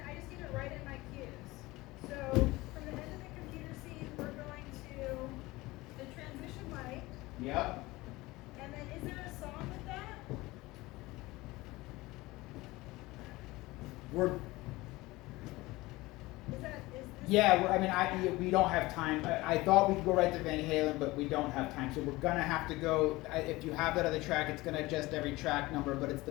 I just need to write in my cues. So from the end of the computer scene, we're going to the transition light. Yep. And then is there a song with that? We're Is this? Yeah, we don't have time. I thought we could go right to Van Halen, but we don't have time. So we're gonna have to go. If you have that other track, it's gonna adjust every track number, but it's the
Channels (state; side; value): quieter; right; 20.3 dB